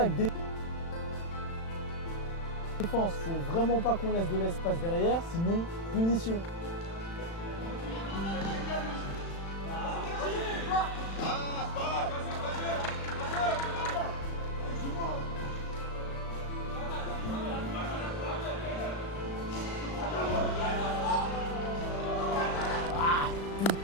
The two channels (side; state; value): right; late; 36 ms